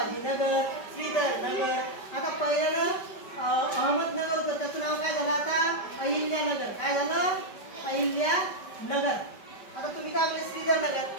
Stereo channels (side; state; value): right; late; 5.2 ms